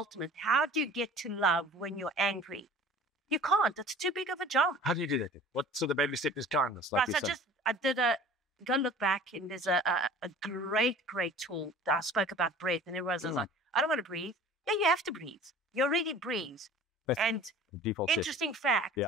How do you get to love when you're angry? You can't. It's too big of a jump. How do you do that? So the baby step is kindness. Like Right, you so said. I did go look back, and there's a great tool that I spoke about breath, and everyone's like, I don't want to breathe. Yeah, you have to breathe. You already breathe. That's And default setting. interesting fact, Yeah.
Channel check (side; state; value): both; normal; correlation 0.44